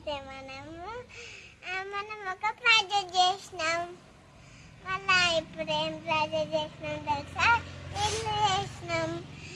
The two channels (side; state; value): both; identical; correlation 1.00